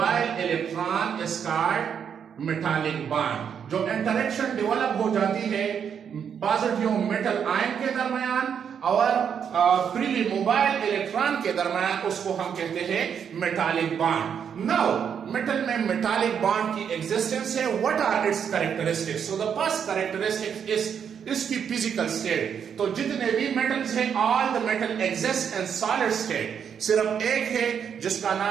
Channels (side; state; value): left; quieter; 7.7 dB